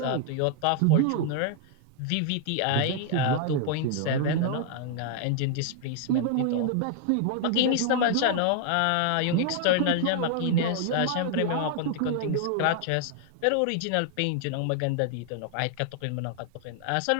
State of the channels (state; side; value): different; both; correlation 0.00